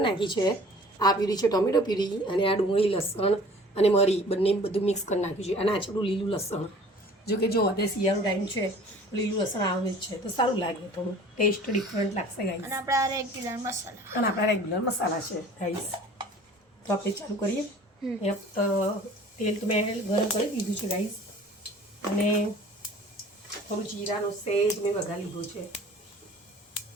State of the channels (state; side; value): normal; both; correlation 0.48